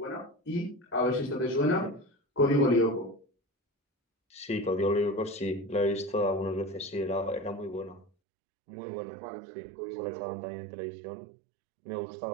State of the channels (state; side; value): drops out; left; at 8.1 s